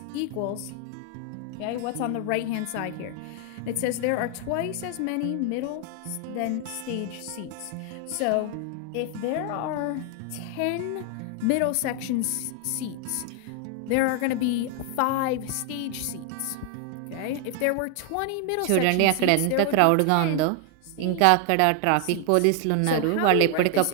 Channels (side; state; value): both; different; correlation 0.00